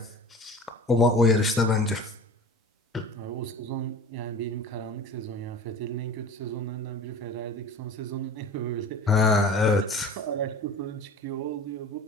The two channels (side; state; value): both; normal; correlation 0.38